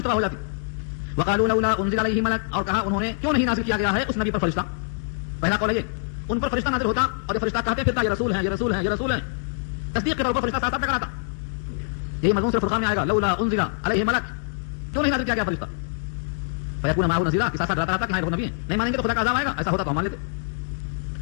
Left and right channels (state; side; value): silent; right; digital silence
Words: ہو جاتی. وقالوا لولا انزل علیہ ملک، اور کہا انہوں نے کیوں نہیں نازل کیا گیا ہے اس نبی پر فرشتہ. پہلا قول ہے یہ، ان پر فرشتہ نازل ہوتا اور یہ فرشتہ کہتے پھرتا یہ رسول ہیں، یہ رسول ہیں، یہ رسول ہیں. تصدیق کے طور پر فرشتہ ساتھ ٹکراتا. یہی مضمون صرف فرقان میں آئے گا، لولا انزل علیہ ملک، کیوں نہیں نازل کیا گیا فرشتہ. فیکون معه نذیرا، کہ ساتھ رہتا کہ ہاں وہ نبی ہیں. نہیں مانیں گے تو خدا کا عذاب آئے گا. ایسا ہوتا تو ہم مان لیتے.